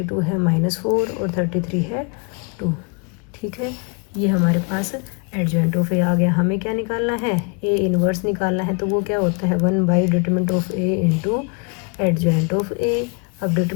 है माइनस 4 और 33 है 2। ठीक है, ये हमारे पास एडजॉइंट ऑफ ए आ गया। हमें क्या निकालना है, ए इनवर्स निकालना है, तो वो क्या होता है 1 by determinant of A into adjoint of A. अब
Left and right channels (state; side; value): quieter; right; 33.1 dB